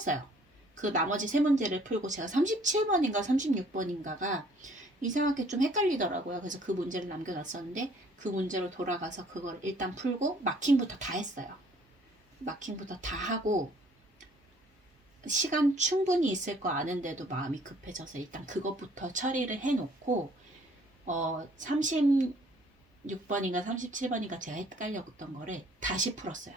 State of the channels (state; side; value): normal; both; correlation 0.59